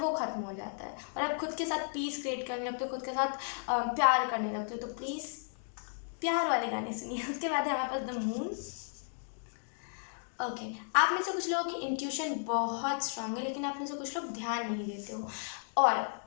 ख़त्म हो जाता है, और आप खुद के साथ पीस क्रिएट करने लगते हो, खुद के साथ प्यार करने लगते हो। तो प्लीज़ प्यार वाले गाने सुनिए। उसके बाद है हमारे पास द मून। ओके, आप में से कुछ लोगों की इंट्यूशन बहुत स्ट्रांग है, लेकिन आप में से कुछ लोग ध्यान नहीं देते हो। और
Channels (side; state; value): right; silent; digital silence